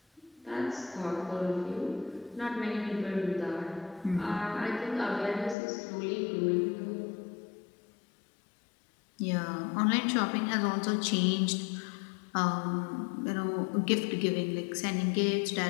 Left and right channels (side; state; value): right; drops out; at 5.6 s